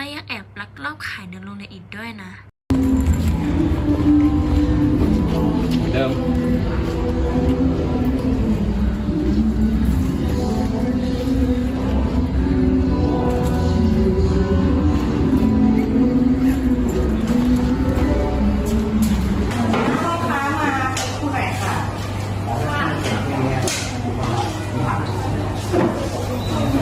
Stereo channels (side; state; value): both; identical; correlation 1.00